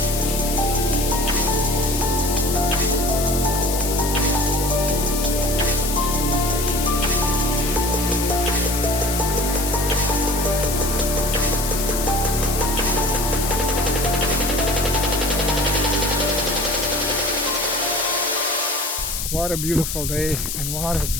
What a beautiful day and what a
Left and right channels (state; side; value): noise; left; hiss, 4 dB below the sound